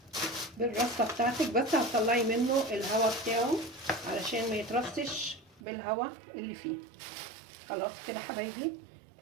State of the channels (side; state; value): left; drops out; at 5.6 s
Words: بالرصه بتاعتك، بس هتطلعي منه الهواء بتاعه علشان ما يترصش بالهواء اللي فيه. خلاص كده حبايبي.